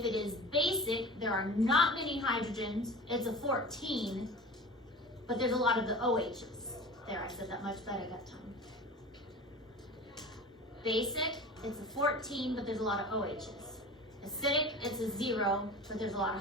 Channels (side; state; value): both; normal; correlation 0.36